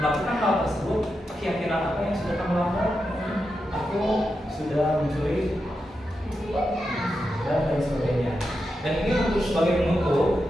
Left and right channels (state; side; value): normal; both; correlation 0.87